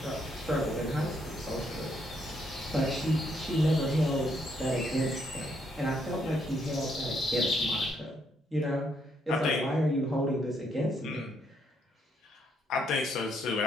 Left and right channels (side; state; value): both; normal; correlation 0.74